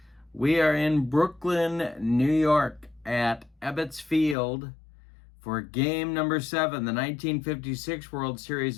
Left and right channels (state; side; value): drops out; right; at 4.4 s